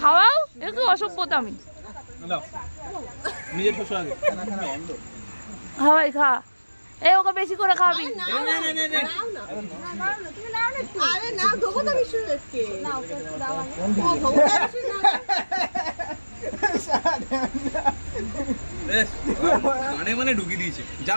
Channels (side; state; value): both; inverted; correlation -1.00